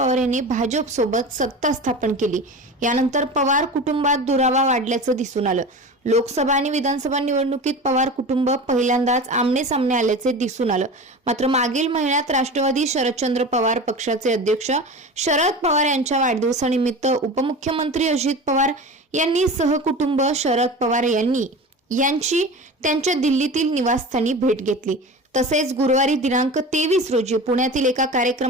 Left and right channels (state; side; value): normal; both; correlation 0.32